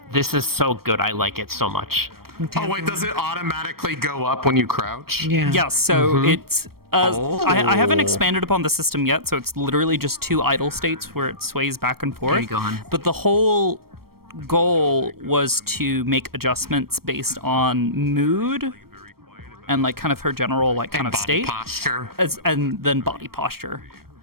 This is so good. I like it so much. Oh wait, does it automatically go up when you crouch? Yeah. Yeah, so it's... I haven't expanded upon the system yet, so it's literally just 2 idle states where it sways back and forth. There you go, hon. But the whole goal was to make adjustments based on mood and like kind of her general like kind of state. Posture. And then body posture,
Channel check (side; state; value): left; late; 0.94 ms